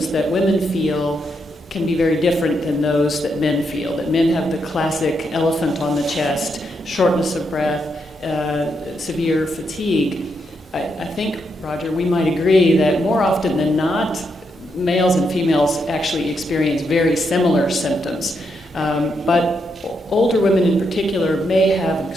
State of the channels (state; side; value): normal; both; correlation 0.80